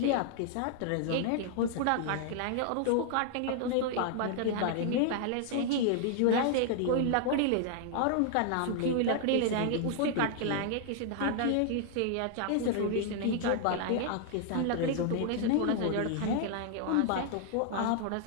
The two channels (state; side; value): different; both; correlation 0.00